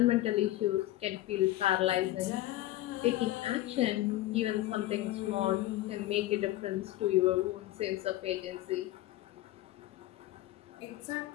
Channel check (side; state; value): right; quieter; 15.8 dB